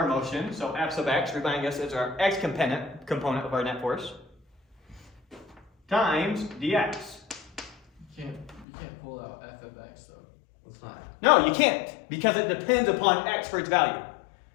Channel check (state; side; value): drops out; right; at 8.7 s